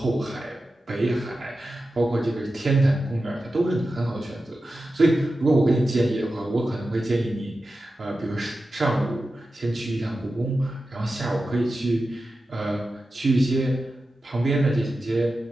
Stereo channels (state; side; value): normal; both; correlation 0.92